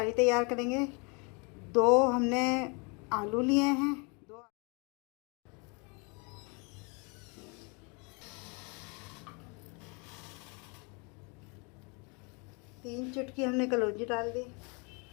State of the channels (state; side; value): quieter; right; 32.3 dB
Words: तैयार करेंगे। 2 हमने आलू लिए हैं। 3 चुटकी हमने कलौंजी डाल दी।